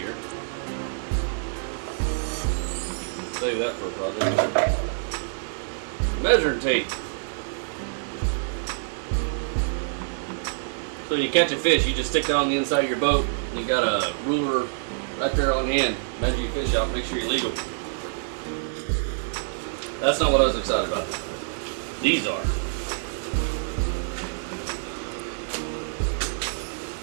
Save that for a project. Measuring tape. So you catch a fish, you just stick it on the inside of your boat. You got a ruler right there on hand. Measure your fish out, make sure you're legal. That's not what I was excited about. These are.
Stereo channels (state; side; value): silent; left; digital silence